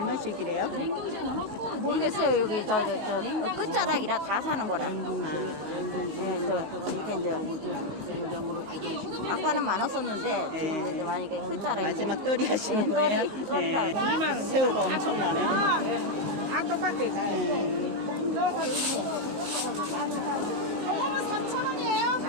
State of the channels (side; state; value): left; late; 15 ms